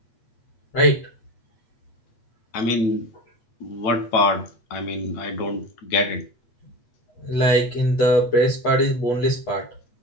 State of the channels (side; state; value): right; late; 8.2 ms